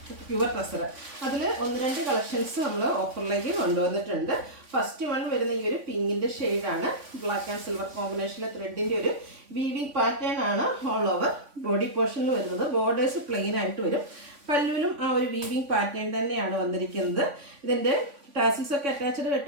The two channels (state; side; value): late; left; 3.5 ms